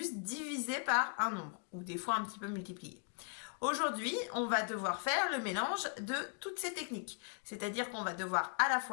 diviser par un nombre, ou des fois un petit peu multiplier. Aujourd'hui, on va devoir faire le mélange de toutes ces techniques. C'est-à-dire qu'on va devoir à la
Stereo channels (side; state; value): right; quieter; 38.8 dB